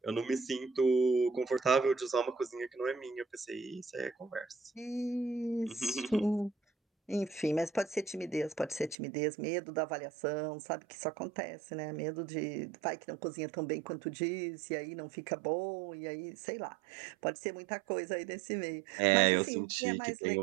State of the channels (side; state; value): left; drops out; at 9.0 s